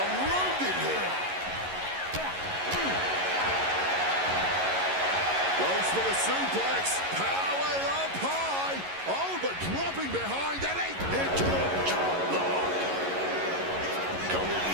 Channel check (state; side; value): late; left; 11 ms